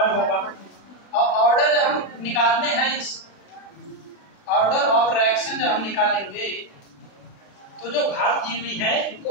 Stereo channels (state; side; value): late; right; 35 ms